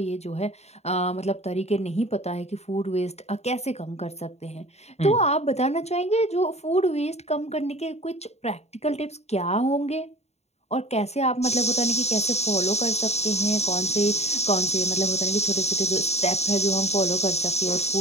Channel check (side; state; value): right; late; 0.31 ms